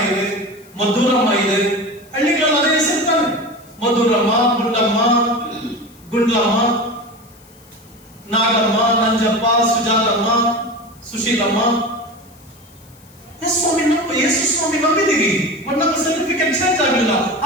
ಇದೆ, ಮಧುರಮ್ಮ ಇದೆ. ಹಳ್ಳಿಗಳಲ್ಲಿ ಅದೇ ಹೆಸರು ತಾನೆ, ಮಧುರಮ್ಮ, ಗುಂಡಮ್ಮ, ಗುಂಡ್ಲಮ್ಮ, ನಾಗಮ್ಮ, ನಂಜಪ್ಪ, ಸುಜಾತಮ್ಮ, ಸುಶೀಲಮ್ಮ. ಸ್ವಾಮಿ ನಾವು ಯೇಸು ಸ್ವಾಮಿ ನಂಬಿದೀವಿ, ಬಟ್ ನಮ್ಮ ಸರ್ಟಿಫಿಕೇಟ್ ಚೇಂಜ್ ಆಗಿಲ್ಲ.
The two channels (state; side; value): noise; left; hiss, 27 dB below the sound